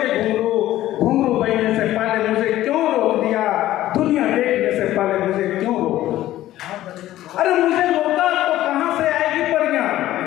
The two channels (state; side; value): quieter; right; 14.3 dB